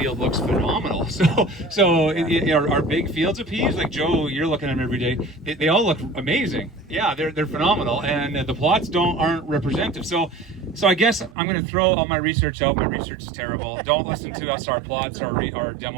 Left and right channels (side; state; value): left; drops out; at 11.4 s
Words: looks phenomenal. So our big fields of peas, like Joe, you're looking at them every day, they all look amazing. Yeah, they're phenomenal, and the plots aren't representative. So I guess I'm going to throw all my research out. My research is terrible. Don't listen to us, our plots, our